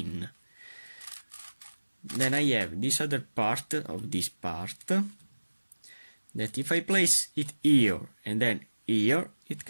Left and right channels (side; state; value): both; inverted; correlation -1.00